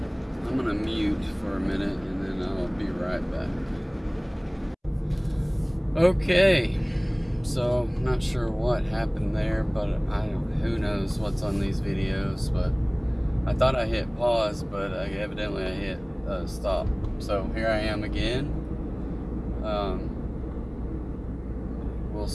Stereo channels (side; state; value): both; identical; correlation 1.00